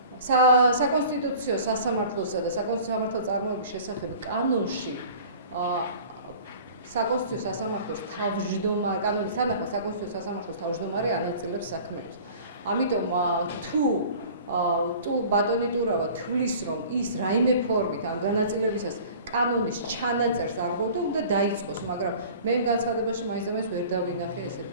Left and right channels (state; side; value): inverted; both; correlation -0.44